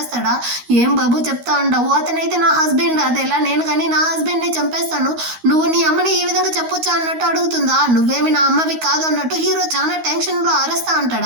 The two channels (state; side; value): late; left; 13 ms